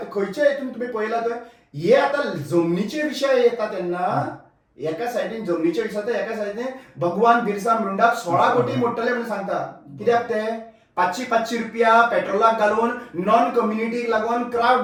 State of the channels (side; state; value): both; identical; correlation 1.00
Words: खंयचे हितून तुमी पळयला थंय हे आता जमनीचे विषय येता तेन्ना एका सायडीन जमनीचे विषय एका सायडीन भगवान बिरसा मुंडाक 16 कोटी मोडटले म्हणून सांगता कित्याक ते 500 रुपया पेट्रोलाक घालून नॉन कम्युनिटीक लागून क्राउड